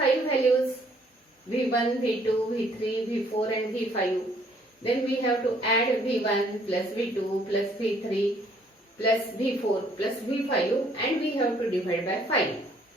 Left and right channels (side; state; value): both; normal; correlation 0.63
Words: values v1, v2, v3, v4 and v5, then we have to add v1 plus v2 plus v3 plus v4 plus v5 and we have to divide by 5.